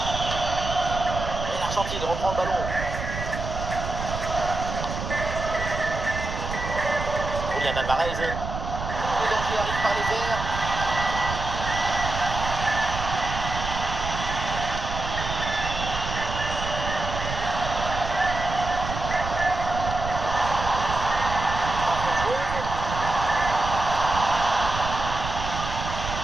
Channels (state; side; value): noise; right; rumble, 6 dB below the sound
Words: Et l'Argentine reprend le ballon. Julian Alvarez. Le danger arrive par les airs.